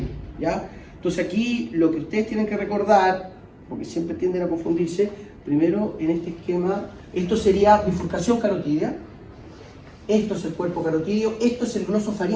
¿ya? Entonces aquí lo que ustedes tienen que recordar, porque siempre tienden a confundirse, primero en este esquema, esto sería bifurcación carotidia, esto es el cuerpo carotidio, esto es el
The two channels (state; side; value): identical; both; correlation 1.00